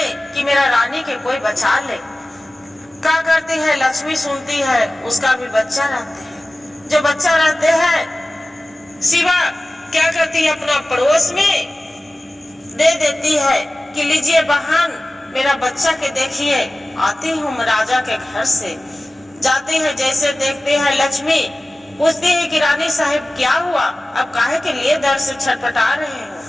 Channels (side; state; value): both; normal; correlation 0.97